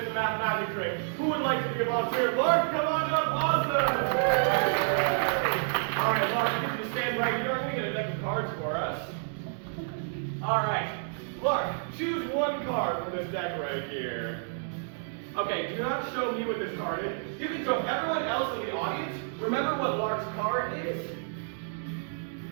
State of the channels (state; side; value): silent; left; digital silence